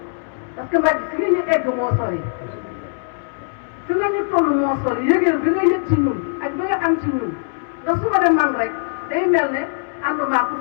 parce que Mbàkke fi nga ñu egg moo sori fi nga ñu toll moo sori yëgeel bi nga yëg ci ñun ak bi nga am ci ñun ndax su ma dem man rek day mel ne ànduma ku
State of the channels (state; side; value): silent; right; 65 dB below the other